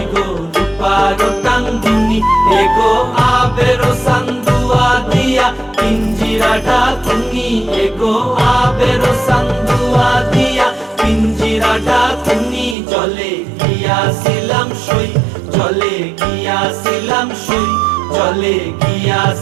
রূপারো টাঙ্গুনি, এগো আবেরো সান্দুয়া দিয়া পিঞ্জিরাটা তুমি, এগো আবেরো সান্দুয়া দিয়া পিঞ্জিরাটা তুমি। জলে গিয়াছিলাম সই, জলে গিয়াছিলাম সই, জলে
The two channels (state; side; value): drops out; left; at 12.8 s